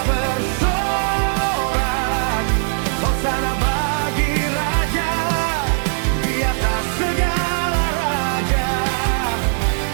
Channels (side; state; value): left; silent; 56 dB below the other